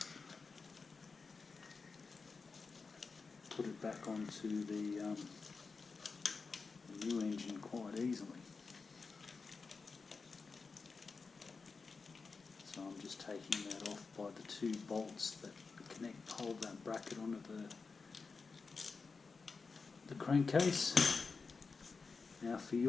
put it back onto the new engine quite easily. So I'm just taking that off by the two bolts that hold that bracket onto the crankcase. Now for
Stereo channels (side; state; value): right; quieter; 4.6 dB